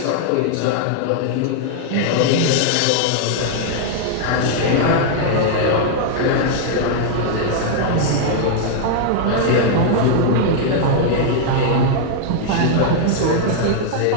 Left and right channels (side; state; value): both; different; correlation 0.00